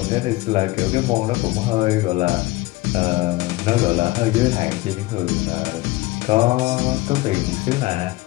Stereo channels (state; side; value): quieter; right; 20.4 dB